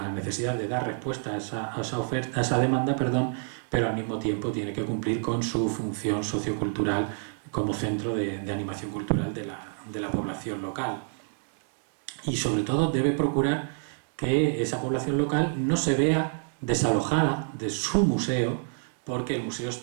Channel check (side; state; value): left; silent; 59 dB below the other